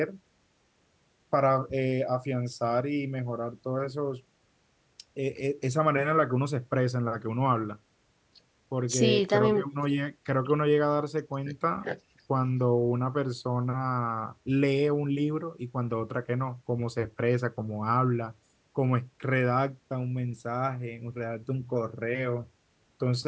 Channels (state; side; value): identical; both; correlation 1.00